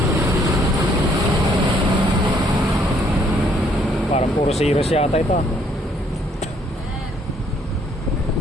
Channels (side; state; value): both; normal; correlation 0.66